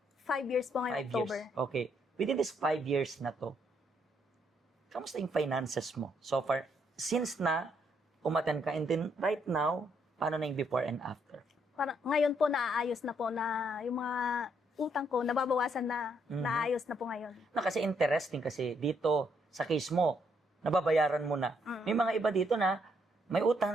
5 years po ngayon, 5 October. years. Okay. Within this 5 years na to, kamusta yung finances mo? So far, since na umaten ka, and then right now, paano na yung before and after? Parang, ngayon po, naaayos na po na yung mga utang ko, nababawasan na, naayos na po ngayon. Kasi interesting kasi dito, sa case mo, nababayaran mo na. May mga iba dito na may utang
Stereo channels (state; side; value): normal; both; correlation 0.73